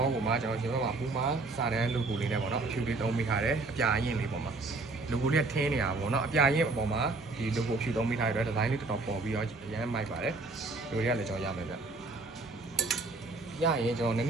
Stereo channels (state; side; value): quieter; left; 3.4 dB